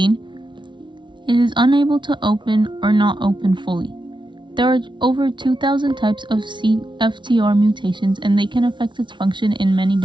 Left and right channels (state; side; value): late; left; 0.23 ms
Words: it is unable to open or not open fully. There are over 2,000 types of CFTR mutations, and they can affect its function in many